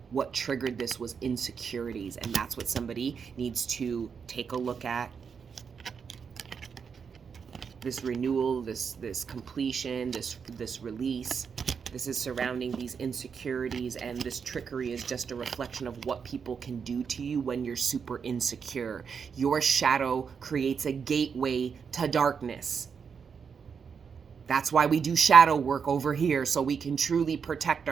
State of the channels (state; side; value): quieter; left; 6.3 dB